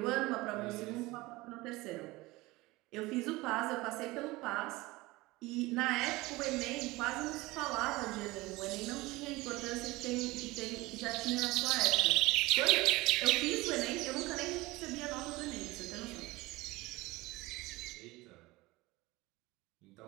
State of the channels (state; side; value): quieter; left; 20.9 dB